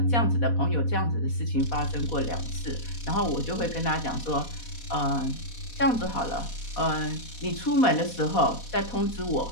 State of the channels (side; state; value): right; late; 4.1 ms